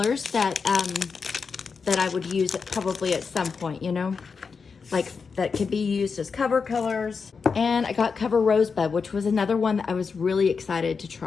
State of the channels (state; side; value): quieter; right; 5.3 dB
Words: that I would use probably at some point, you know? Like that could be used as cover colors. And I got Cover Rosebud, which was another one that I was really excited to